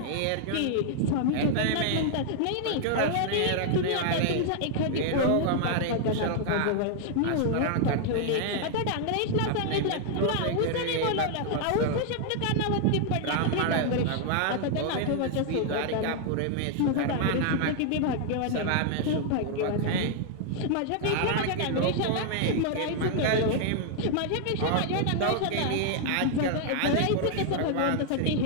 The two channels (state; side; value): different; both; correlation 0.00